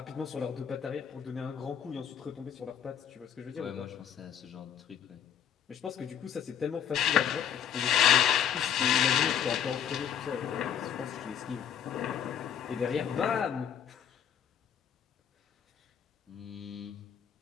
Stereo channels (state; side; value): quieter; right; 9.0 dB